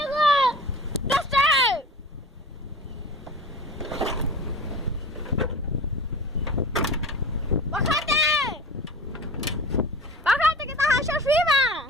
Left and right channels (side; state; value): both; normal; correlation 0.37